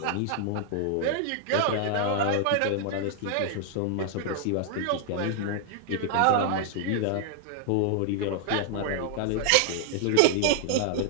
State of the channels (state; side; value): different; both; correlation 0.00